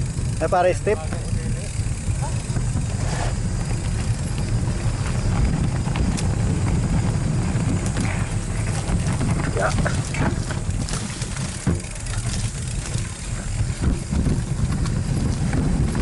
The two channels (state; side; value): identical; both; correlation 1.00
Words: Ay, para step. Yeah.